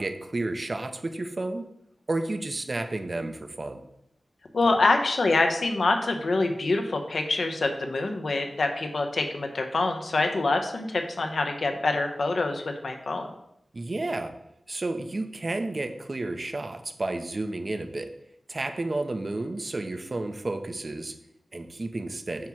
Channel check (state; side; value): normal; both; correlation 0.94